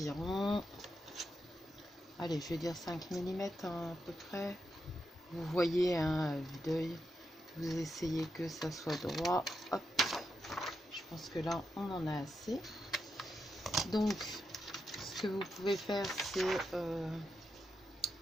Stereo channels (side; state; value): both; normal; correlation 0.85